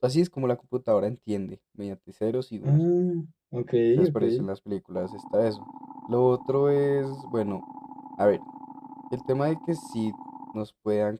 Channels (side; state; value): both; identical; correlation 1.00